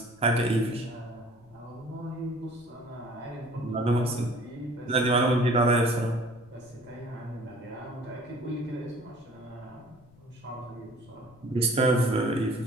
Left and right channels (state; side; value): noise; left; rumble, 26 dB below the sound